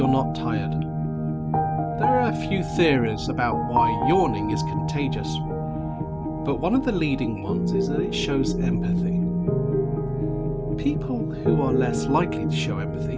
not tired? There are a few theories about why yawning is contagious, but one of the leading ones is that it shows empathy. People who are less likely to show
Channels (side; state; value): both; identical; correlation 1.00